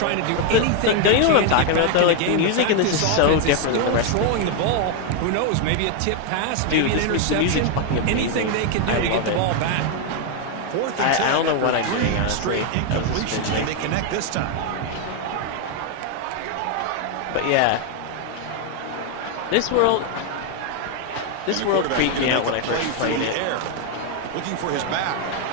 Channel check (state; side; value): different; both; correlation 0.01